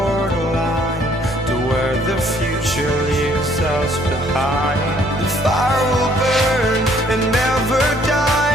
to where the future leaves us behind. The fire will burn and never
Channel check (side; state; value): both; normal; correlation 0.63